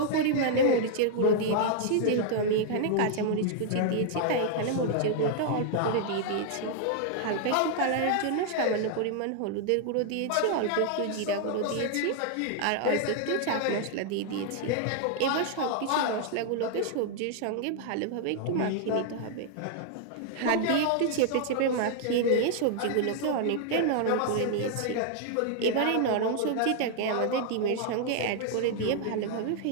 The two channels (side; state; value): both; different; correlation 0.00